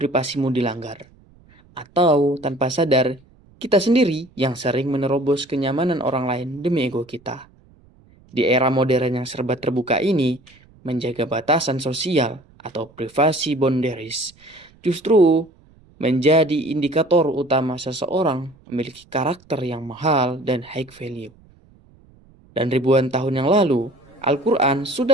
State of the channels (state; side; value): noise; right; rumble, 29 dB below the sound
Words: dilanggar? Atau tanpa sadar, kita sendiri yang sering menerobos kenyamanan orang lain demi ego kita. Di era modern yang serba terbuka ini, menjaga batasan sosial atau privasi boundaries justru menjadi indikator utama seseorang memiliki karakter yang mahal dan high value. Dan ribuan tahun yang lalu, Al-Quran